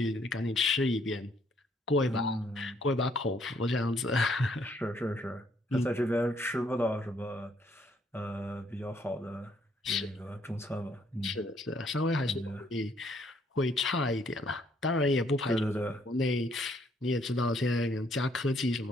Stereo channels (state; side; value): normal; both; correlation 0.68